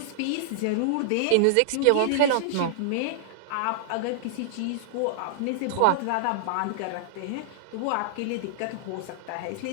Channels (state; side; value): different; both; correlation -0.01